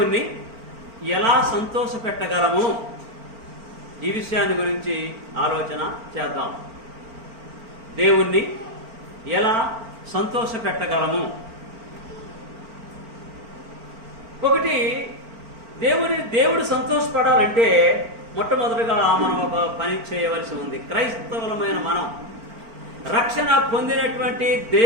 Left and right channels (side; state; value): left; late; 4.4 ms